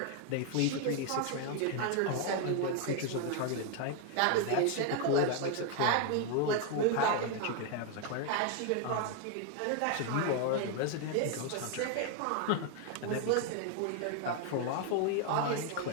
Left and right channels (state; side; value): different; both; correlation 0.00